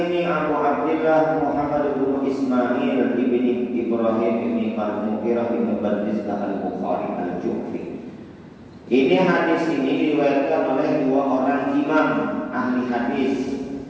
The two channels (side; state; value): both; identical; correlation 1.00